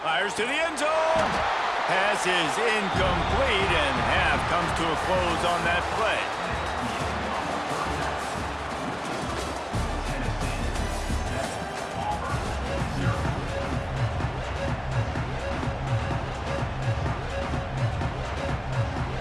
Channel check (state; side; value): identical; both; correlation 1.00